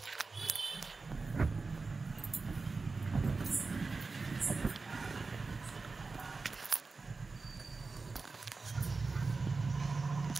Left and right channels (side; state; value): left; quieter; 4.1 dB